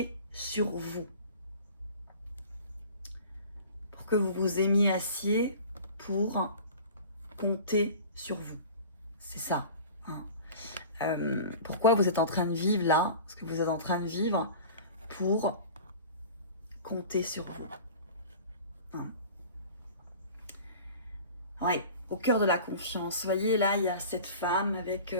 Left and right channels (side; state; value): both; inverted; correlation -0.40